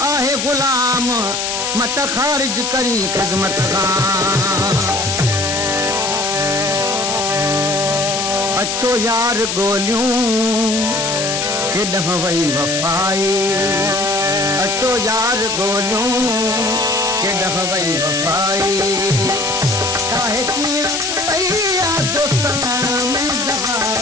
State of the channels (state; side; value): noise; left; hiss, 1 dB below the sound